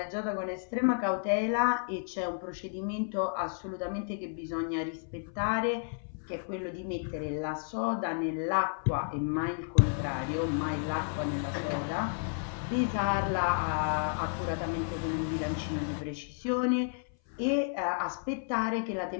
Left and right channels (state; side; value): silent; right; 56 dB below the other